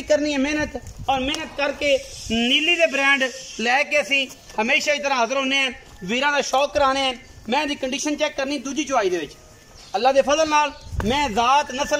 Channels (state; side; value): identical; both; correlation 1.00